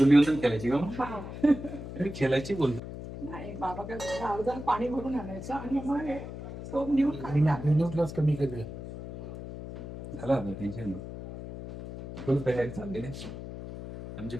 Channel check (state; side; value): noise; left; hum, 10 dB below the sound